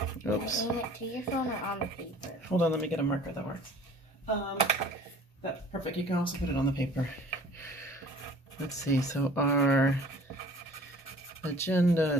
oops. Aim it to your phone or on the paper? Hold on, let me get a marker that works. That's perfect. You can also put it on the paper. Let's see, so our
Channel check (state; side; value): normal; both; correlation 0.48